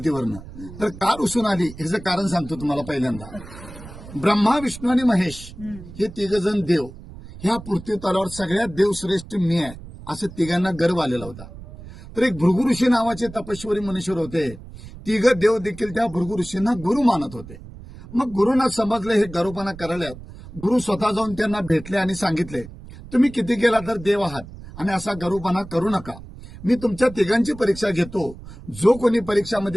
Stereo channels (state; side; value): noise; right; rumble, 15 dB below the sound